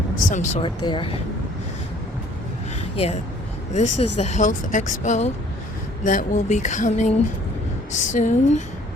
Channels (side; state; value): both; normal; correlation 0.57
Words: sort there. Yeah, this is the health expo that will be coming soon